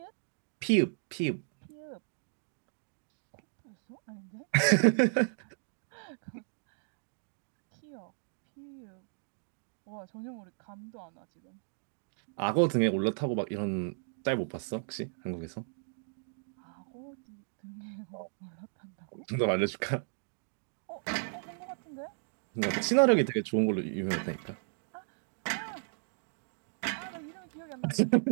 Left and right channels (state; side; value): silent; left; digital silence